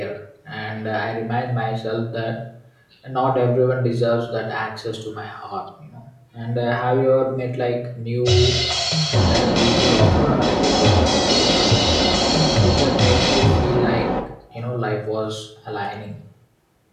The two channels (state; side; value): identical; both; correlation 1.00